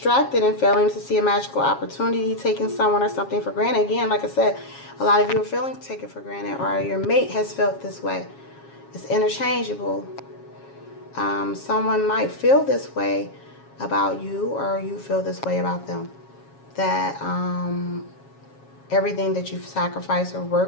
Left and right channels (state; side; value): late; right; 7.3 ms